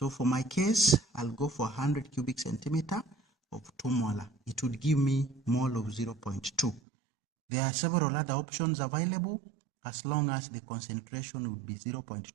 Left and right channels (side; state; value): left; drops out; at 6.8 s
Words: for my case, I'll go for 100 cubic centimeter of 2 molar. It would give me mole of 0.2. There are several other options available. As long as the concentration would be